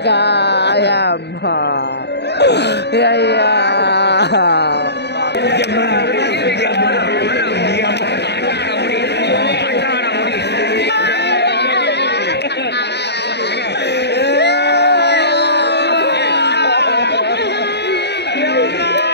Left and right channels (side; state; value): right; late; 0.49 ms